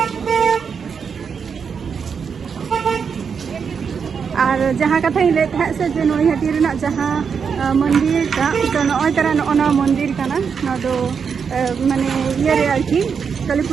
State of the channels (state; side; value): quieter; left; 6.3 dB